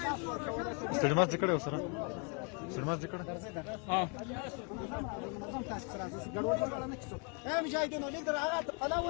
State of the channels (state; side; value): quieter; right; 35.3 dB